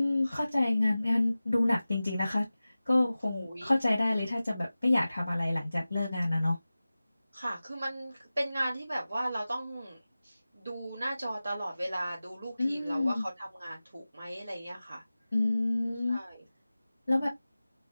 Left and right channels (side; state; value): both; inverted; correlation -0.96